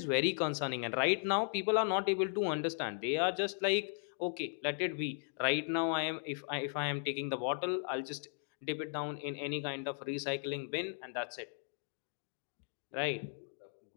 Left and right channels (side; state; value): right; silent; digital silence